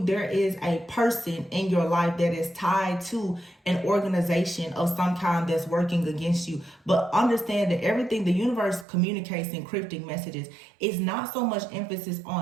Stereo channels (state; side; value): drops out; left; at 8.8 s